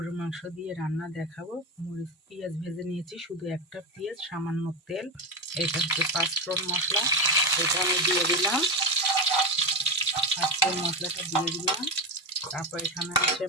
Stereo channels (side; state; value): both; normal; correlation 0.15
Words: মাংস দিয়ে রান্না দেখাবো। মরিচ পেঁয়াজ ভেজে নিয়েছি, শুধু একটা পেঁয়াজ, সামান্য তেল। এটা হচ্ছে পাঁচফোড়ন মশলা, এটা আমি দিয়ে দিলাম। পাঁচফোড়ন মশলাটা দিয়ে দিলাম। তারপর এখানে আছে